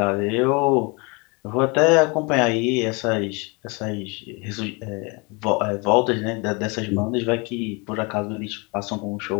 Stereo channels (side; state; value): right; quieter; 29.5 dB